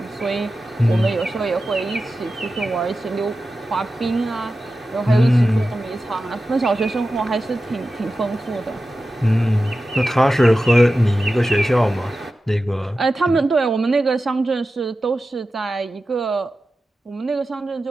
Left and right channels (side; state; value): both; normal; correlation 0.93